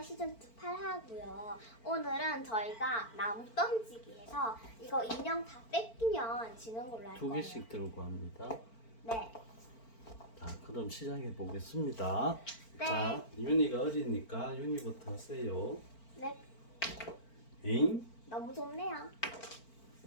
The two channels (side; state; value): right; late; 4.4 ms